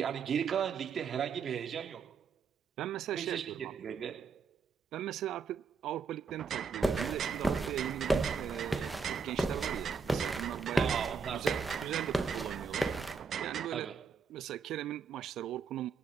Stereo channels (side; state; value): left; quieter; 5.4 dB